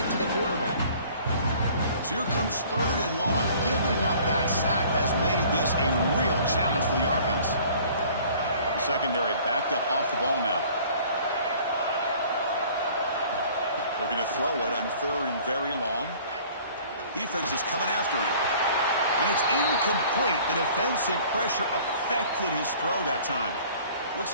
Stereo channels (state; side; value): inverted; both; correlation -0.51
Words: to the quarterback. So here comes 3rd and long. Giving up that sack has made this a real challenge for the offense. The secondary backed up off the ball now. Looking to throw it on 3rd and very long. Defense is coming after him. And it's incomplete. The defensive pressure affected his throw that time.